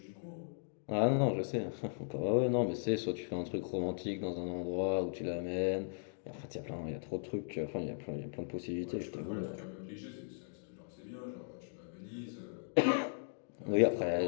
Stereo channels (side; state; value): right; silent; digital silence